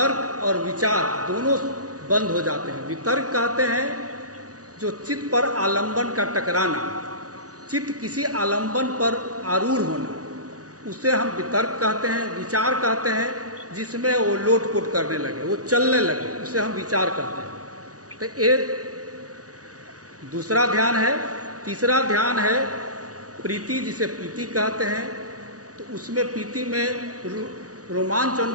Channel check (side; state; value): left; late; 0.67 ms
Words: और विचार दोनों बंद हो जाते हैं। वितर्क कहते हैं जो चित्त पर आलंबन का टकराना, चित्त किसी आलंबन पर आरूढ़ होना, उसे हम वितर्क कहते हैं। विचार कहते हैं जिसमें वो लोटपोट करने लगे, वो चलने लगे, उसे हम विचार कहते हैं। तो एक दूसरा ध्यान है। तीसरा ध्यान है प्रीति, जिसे प्रीति कहते हैं। तो उसमें प्रीति में रोमांच